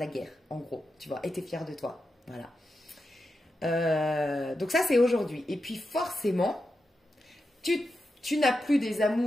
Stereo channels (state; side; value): normal; both; correlation 0.88